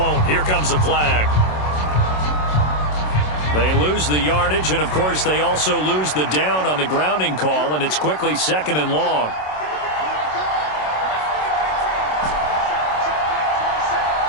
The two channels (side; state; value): right; late; 27 ms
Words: Here comes the flag. They lose the yardage, and, of course, they also lose the down on the grounding call, and it's quickly 2nd and long.